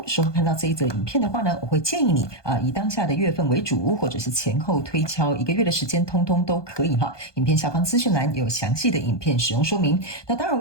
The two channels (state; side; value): late; right; 1.2 ms